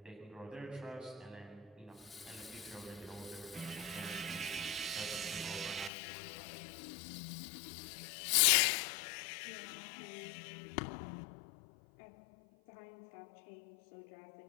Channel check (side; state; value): right; drops out; at 5.9 s